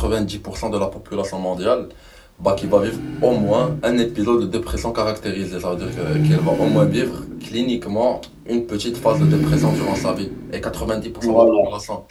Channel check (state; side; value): identical; both; correlation 1.00